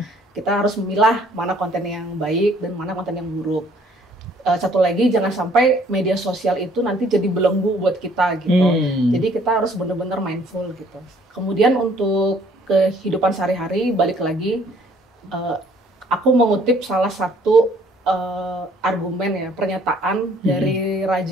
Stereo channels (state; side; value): normal; both; correlation 0.60